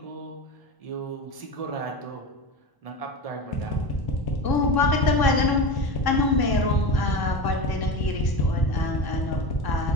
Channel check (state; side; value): late; right; 1.0 ms